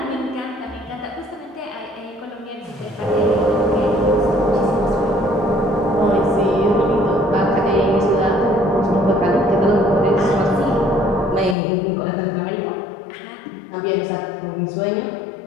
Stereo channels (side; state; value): right; drops out; at 11.6 s